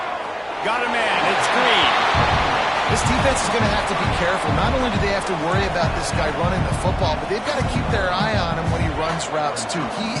Got a man. It's Green. This defense is going to have to be careful. Not only do they have to worry about this guy running the football, but they've got to keep their eye on him when he runs routes, too.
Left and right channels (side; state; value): both; identical; correlation 1.00